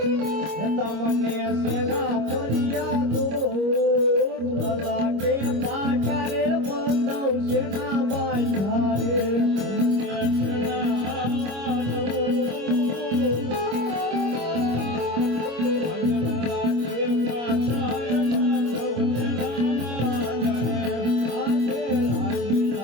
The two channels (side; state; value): left; late; 25 ms